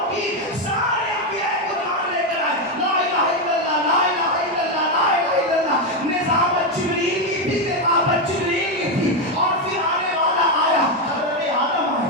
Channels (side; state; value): both; normal; correlation 0.07